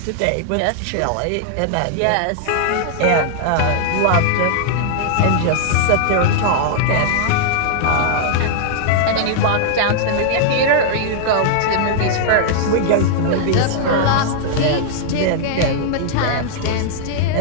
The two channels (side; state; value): both; different; correlation -0.01